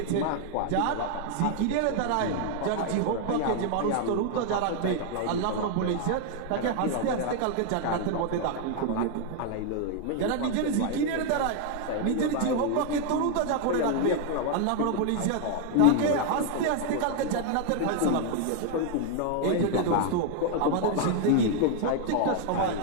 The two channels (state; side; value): different; both; correlation 0.00